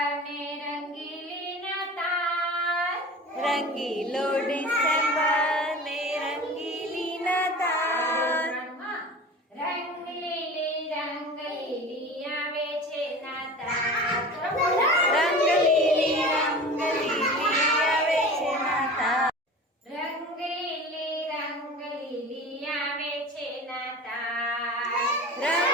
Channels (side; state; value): both; normal; correlation 0.36